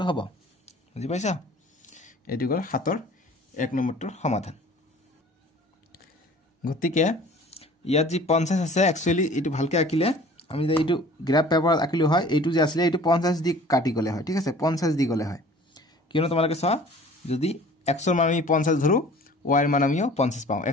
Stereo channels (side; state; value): both; normal; correlation 0.48